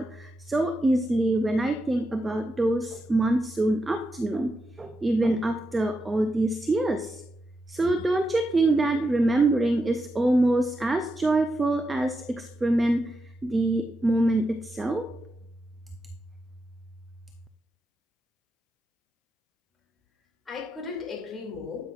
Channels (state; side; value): normal; both; correlation 0.86